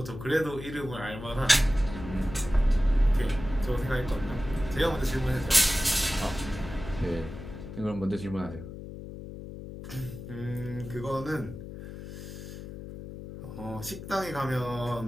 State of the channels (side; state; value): left; noise; hum, 11 dB below the sound